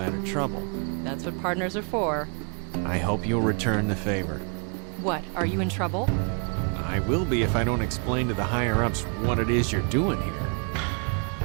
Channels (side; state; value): left; quieter; 39.1 dB